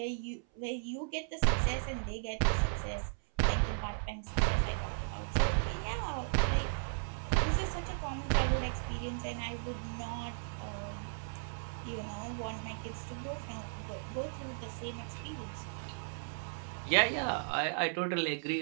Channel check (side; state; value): left; silent; 54 dB below the other